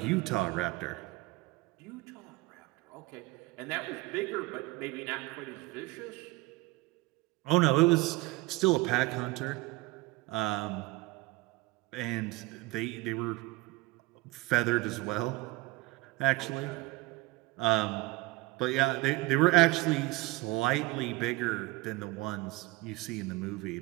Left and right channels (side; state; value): left; quieter; 21.4 dB